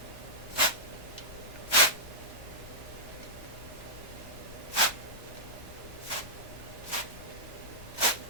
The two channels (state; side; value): normal; both; correlation -0.10